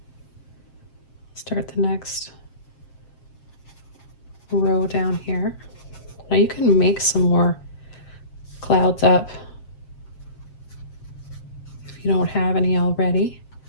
Start the next row down here. Now you can make some more clouds up if you don't have any already.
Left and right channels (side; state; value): right; late; 7.4 ms